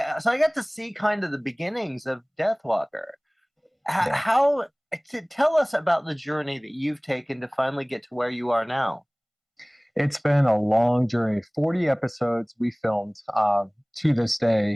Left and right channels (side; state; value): both; identical; correlation 1.00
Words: got to see kind of the beginnings of Deathwalker. How to tell us about the journey that you've taken to finally get to where you are now? It's been a long journey. 40 episodes we filmed to this